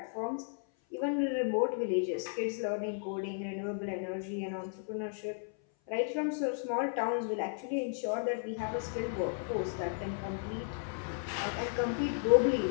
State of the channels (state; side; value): silent; right; 55 dB below the other